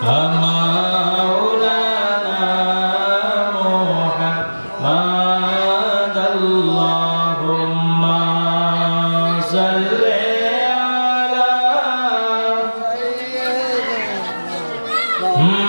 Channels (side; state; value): both; inverted; correlation -1.00